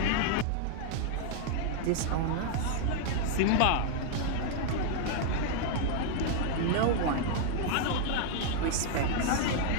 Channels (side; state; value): both; different; correlation 0.00